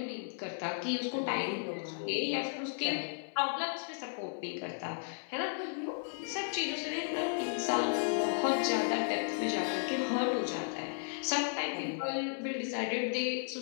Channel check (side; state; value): right; silent; 55 dB below the other